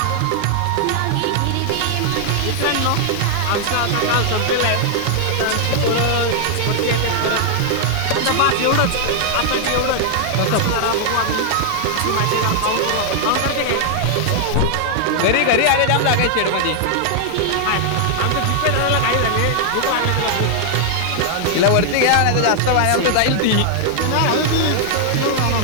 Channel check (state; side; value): different; both; correlation 0.00